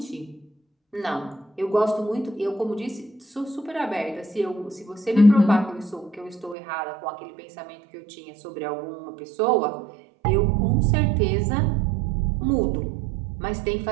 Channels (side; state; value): left; drops out; at 6.6 s